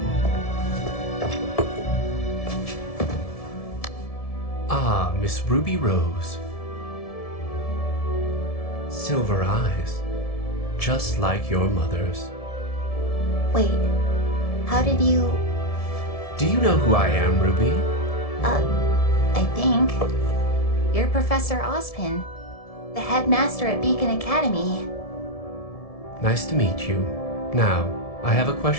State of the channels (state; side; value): late; right; 1.7 ms